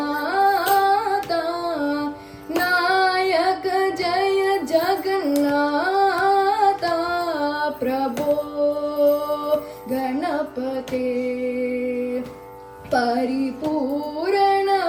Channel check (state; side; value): identical; both; correlation 1.00